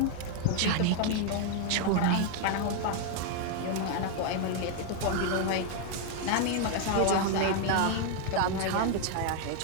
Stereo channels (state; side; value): different; both; correlation 0.00